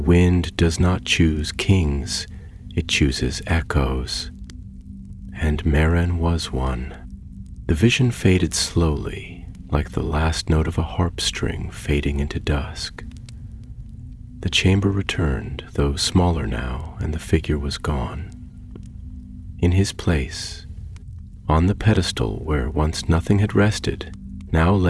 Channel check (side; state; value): both; identical; correlation 1.00